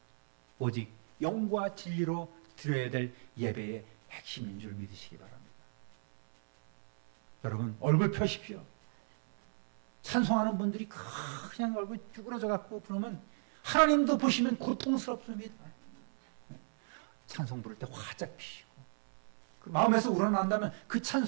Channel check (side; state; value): left; silent; 55 dB below the other